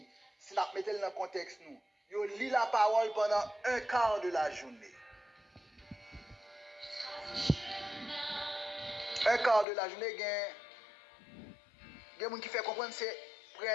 Si nous mettons dans le contexte, nous. Yo lit la parole pendant un quart de la journée. Un quart de la journée, il y a des gens qui fait comprendre que c'est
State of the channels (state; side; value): drops out; right; at 9.7 s